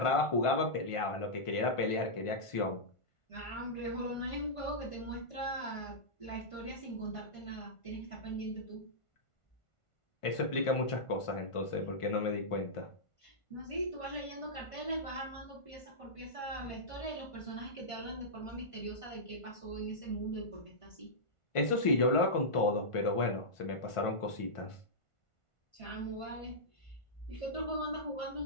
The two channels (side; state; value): right; late; 1.5 ms